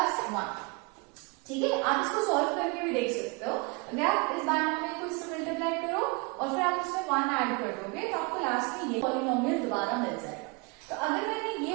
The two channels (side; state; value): left; quieter; 28.9 dB